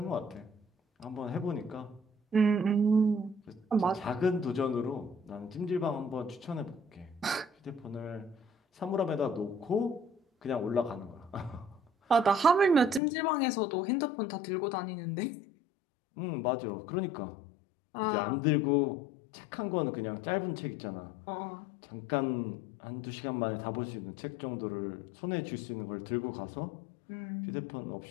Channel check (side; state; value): right; drops out; at 13.0 s